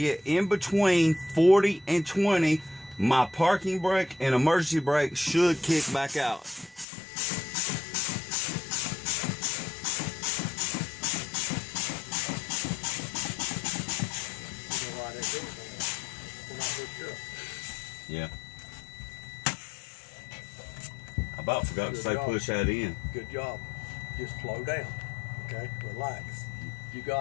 in between 40 and 20, my parking brake and emergency brake should kick back out. Yeah. I about forgot to say push that in. Good job. Just slow down. Okay? Relax. You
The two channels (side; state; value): right; drops out; at 6.9 s